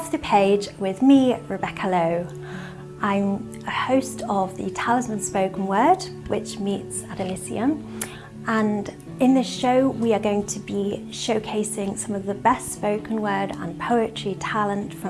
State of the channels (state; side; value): identical; both; correlation 1.00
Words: the Page with me, Rebecca Lowe. I'm a host of the Talisman Spoken Word, which meets at Elysium, and in this show we are going to be showcasing some of the best spoken word and poetry talent